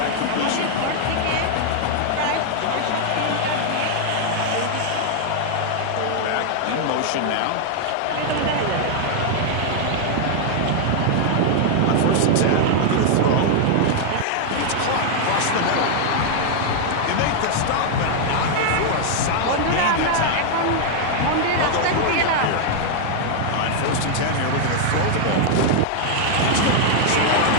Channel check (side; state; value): both; different; correlation 0.00